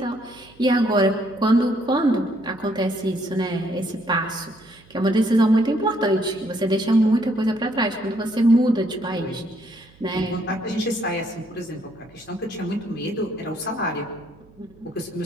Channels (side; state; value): right; noise; hum, 27 dB below the sound